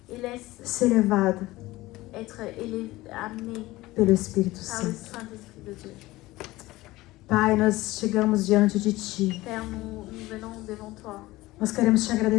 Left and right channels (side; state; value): right; quieter; 18.7 dB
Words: Et laisse ser levado être amené pelo Espírito par le Santo. Saint-Esprit de Dieu. Pai, nós chegamos diante de Ti. Père, nous venons devant toi. Nós queremos te